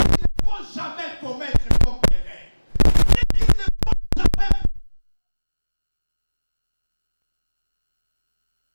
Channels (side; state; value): both; inverted; correlation -1.00